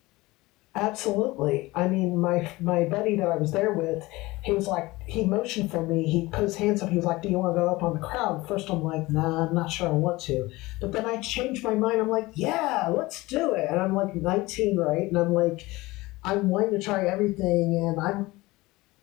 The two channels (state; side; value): quieter; right; 20.6 dB